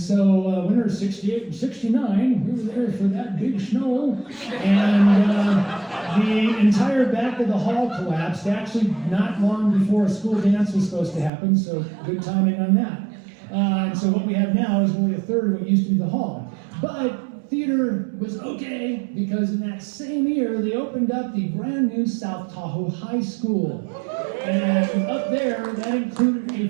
winter of 68 and 69, we were there for that big snow, and the entire back of the hall collapsed, actually not long before a school dance was supposed to happen, so good timing on that. And so what we have now is only a third of what used to be the hall. But theater was okay, because in that same year, they opened up the brand new South Tahoe High School. And up there, that included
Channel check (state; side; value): drops out; left; at 11.3 s